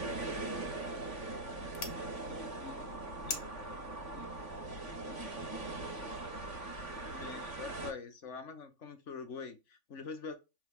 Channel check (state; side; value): late; right; 3.5 ms